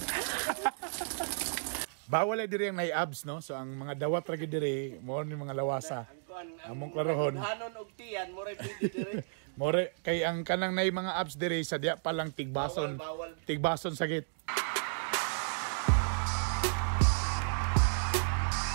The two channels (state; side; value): silent; left; digital silence